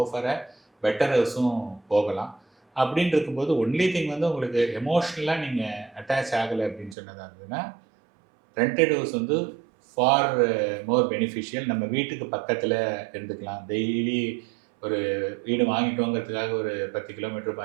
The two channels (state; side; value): drops out; left; at 7.0 s